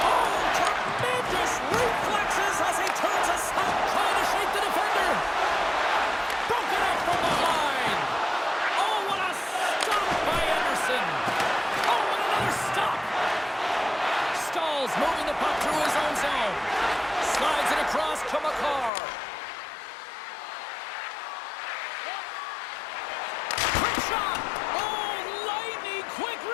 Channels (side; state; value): right; drops out; at 18.9 s